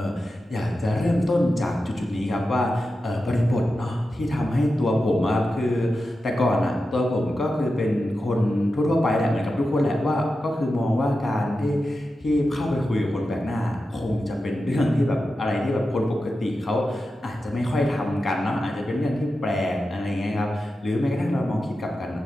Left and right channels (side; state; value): both; normal; correlation 0.91